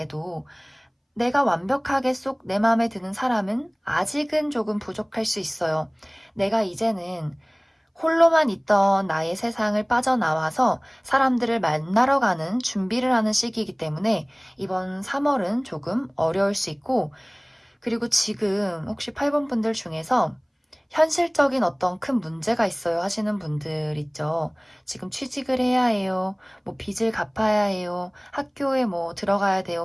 내가 완벽하게 쏙 내 마음에 드는 사람은 아직은 조금 부족할 수 있어요. 내가 이제는 홀로만 있던 나의 세상을 빠져나와서 사람들을 만나러 가는 준비를 하는 시기이기 때문에 이번 3월은 조금 어려울 수 있고, 그리고 지금 혹시 8번 분들 중에서 현실적인 어떤 큰 문제가 있어요 하시는 분들 있죠. 지금 취직을 해야 해요. 뭐 빚을 갚아야 해요. 학교에 뭐 들어가야 돼요.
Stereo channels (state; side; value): identical; both; correlation 1.00